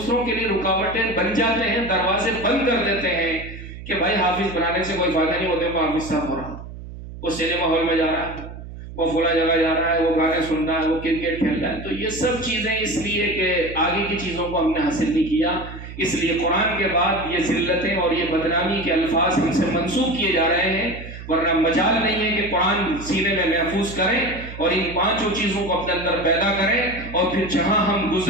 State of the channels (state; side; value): noise; right; hum, 12 dB below the sound